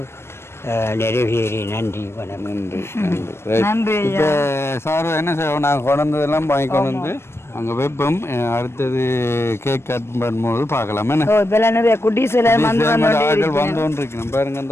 நிறைவேறி நன்றி வணக்கம். நன்றி நன்றி. இப்போ சார் என்ன செய்வோம், நாங்கள் கொண்டதெல்லாம் வாங்கி கொண்டு வந்து அங்கே வைப்போம். அடுத்தது கேக் கட் பண்ணும்போது பார்க்கலாம். என்ன நிறைய குட்டீஸ் ஆட்கள் வந்தோன்றிருக்கணும் பாருங்க.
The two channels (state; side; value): late; right; 0.12 ms